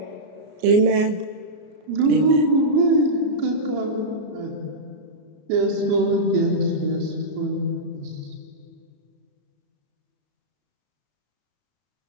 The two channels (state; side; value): late; left; 33 ms